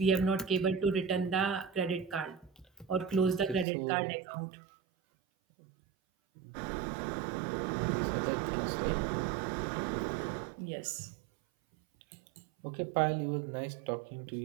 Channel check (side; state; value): left; drops out; at 3.7 s